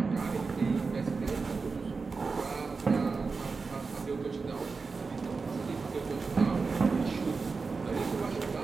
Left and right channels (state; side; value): quieter; left; 4.5 dB